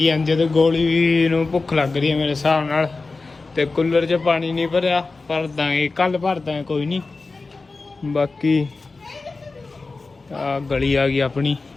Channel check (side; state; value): right; quieter; 3.8 dB